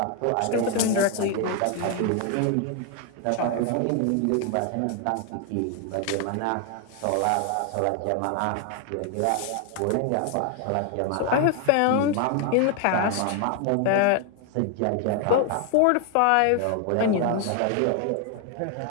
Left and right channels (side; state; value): both; different; correlation 0.00